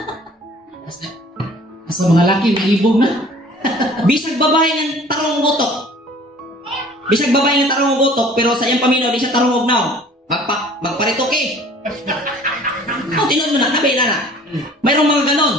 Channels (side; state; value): both; normal; correlation 0.50